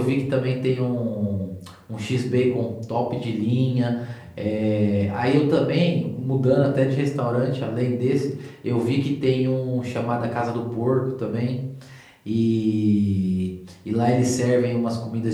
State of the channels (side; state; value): both; identical; correlation 1.00